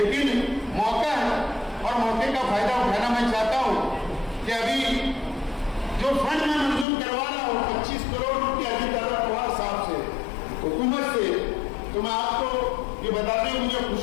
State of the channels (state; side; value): drops out; right; at 6.9 s